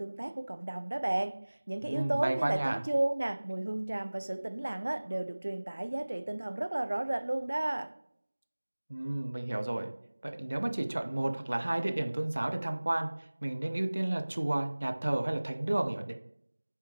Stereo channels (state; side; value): inverted; both; correlation -1.00